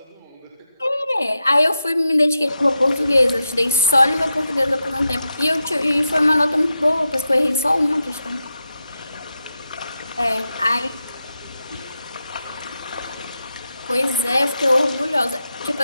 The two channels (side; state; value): both; inverted; correlation -0.88